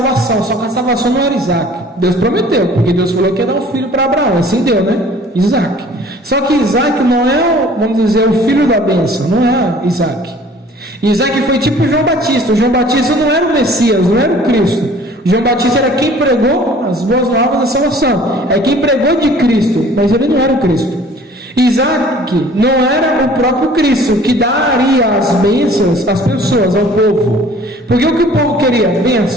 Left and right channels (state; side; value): normal; both; correlation 0.51